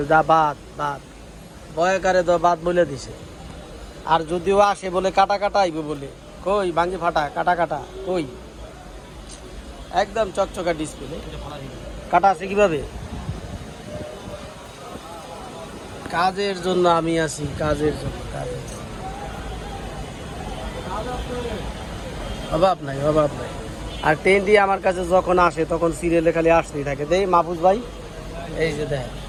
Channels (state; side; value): identical; both; correlation 1.00